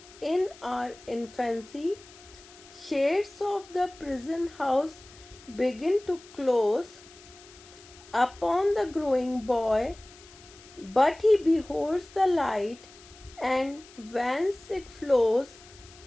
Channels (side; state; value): left; noise; hiss, 22 dB below the sound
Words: in our infancy. Shades of the prison house begin to close upon the growing boy, but he beholds the light, and whence it flows,